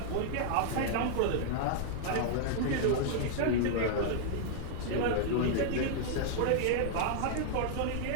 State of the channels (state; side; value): different; both; correlation -0.01